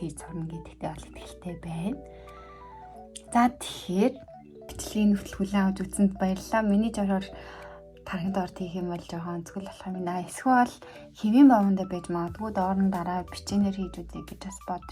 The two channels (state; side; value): identical; both; correlation 1.00